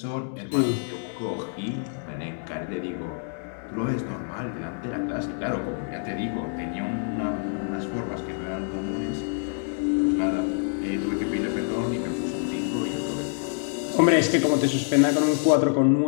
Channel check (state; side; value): silent; right; 58 dB below the other